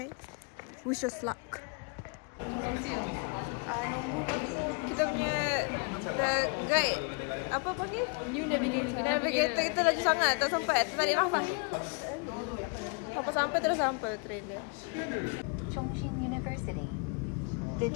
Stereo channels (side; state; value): right; quieter; 35.2 dB